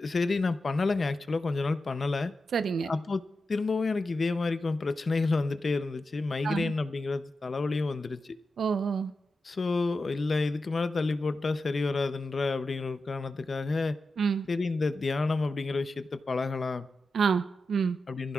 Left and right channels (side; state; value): both; normal; correlation 0.90